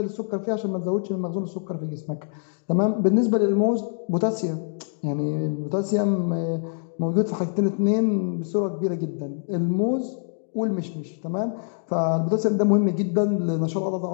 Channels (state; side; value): silent; right; digital silence